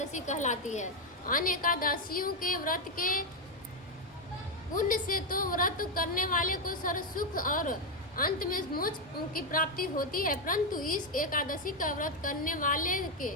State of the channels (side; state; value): both; normal; correlation 0.04